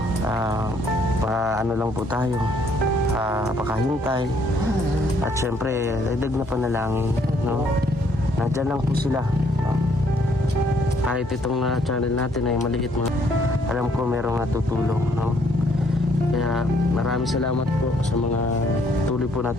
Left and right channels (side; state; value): both; normal; correlation 0.66